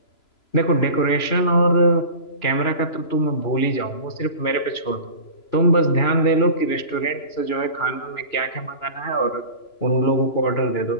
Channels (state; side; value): late; right; 3.0 ms